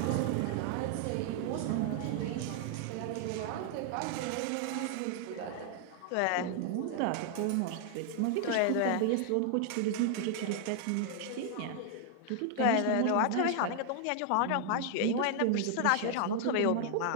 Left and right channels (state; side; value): different; both; correlation 0.00